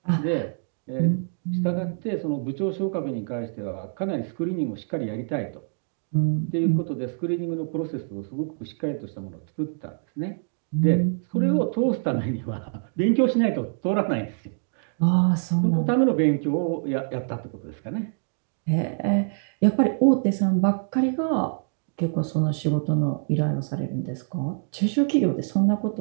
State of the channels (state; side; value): silent; left; digital silence